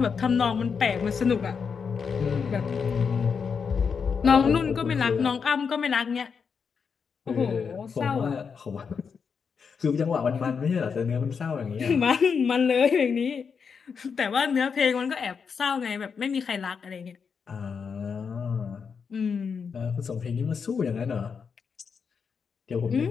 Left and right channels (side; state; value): right; quieter; 6.0 dB